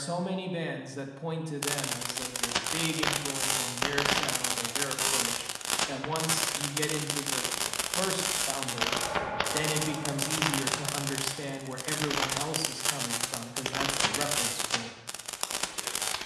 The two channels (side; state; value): both; identical; correlation 1.00